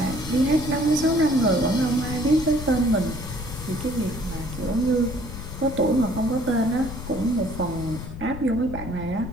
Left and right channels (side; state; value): left; noise; rumble, 9 dB below the sound